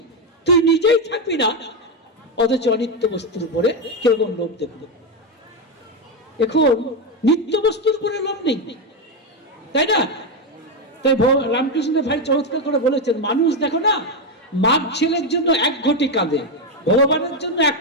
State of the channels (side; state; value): both; normal; correlation 0.07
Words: তুই নিজেই থাকবি না, অথচ অনিত্য বস্তুর উপরে কিরকম লোভ দেখলো। এখন নিত্য বস্তুর উপরে লোভ নেই, তাই না? তাই রামকৃষ্ণ ভাই চমৎকার করে বলেছেন, মানুষ দেখো না, মাঘ ছেলের জন্য 1 ঘটি কাঁদে, ভগবানের জন্য 1